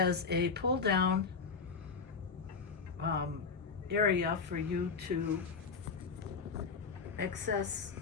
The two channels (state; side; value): quieter; right; 5.1 dB